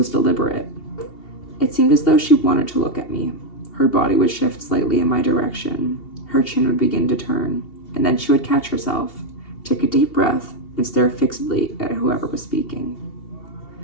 deliberate. It seemed as though she wanted to look at me. Her body would shift slightly in my direction. Her chin would begin to turn, and then she would catch herself, take a deep breath, and stare fixedly at whoever was speaking.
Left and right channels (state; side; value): late; right; 2.7 ms